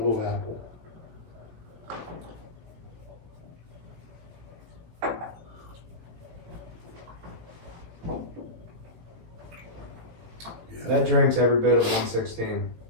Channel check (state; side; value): late; left; 18 ms